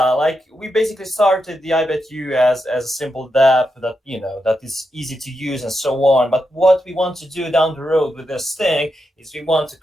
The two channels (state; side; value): normal; both; correlation 0.85